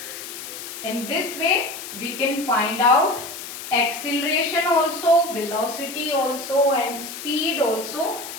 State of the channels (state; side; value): noise; left; hiss, 10 dB below the sound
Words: In this way, we can find out acceleration also, velocity also, and speed also